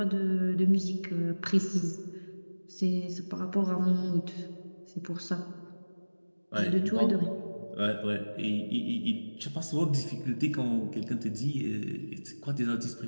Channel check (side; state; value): both; inverted; correlation -1.00